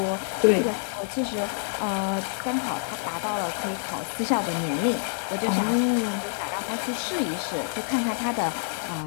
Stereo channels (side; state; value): right; silent; 60 dB below the other